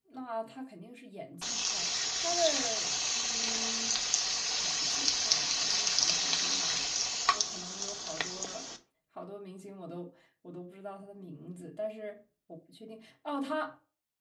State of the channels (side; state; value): both; identical; correlation 1.00